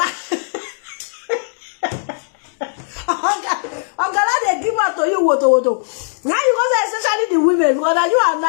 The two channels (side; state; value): right; silent; digital silence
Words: Gala they give out to you woto. Now you go say especially the women because now you